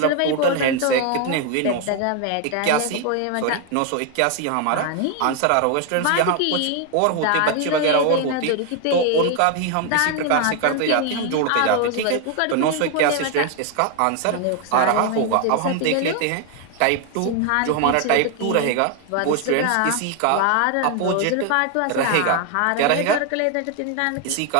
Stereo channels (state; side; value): different; both; correlation 0.01